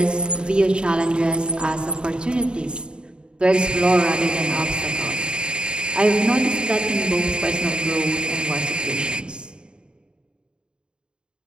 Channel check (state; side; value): late; left; 0.051 ms